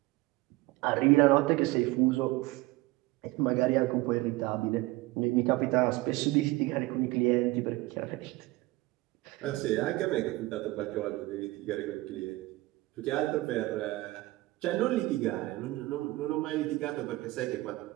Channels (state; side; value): quieter; left; 20.0 dB